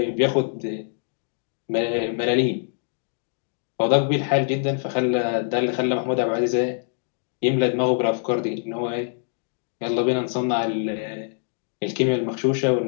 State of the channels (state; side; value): silent; right; digital silence